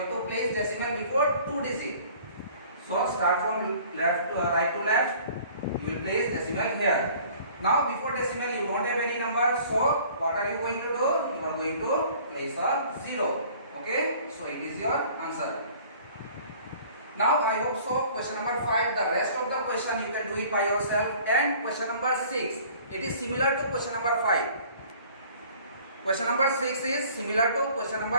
have to place decimal before 2 digits. So start from left to right to left. You will place decimal here. Now before decimal you don't have any number, so what are you going to do? You are going to place a 0. Okay, so it is your answer. Now I hope so question number 5, the rest of the question you can do it by yourself. And question number 6, it is similar to question number 5. Question number 6 is similar to question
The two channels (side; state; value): both; inverted; correlation -0.51